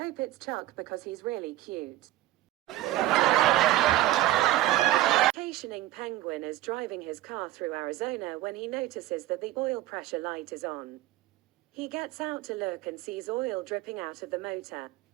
it's Chuck because he's really cute." Vacationing penguin is driving his car through Arizona when he notices that the oil pressure light is on. He gets out to look and sees oil dripping out of the motor.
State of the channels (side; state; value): left; quieter; 15.1 dB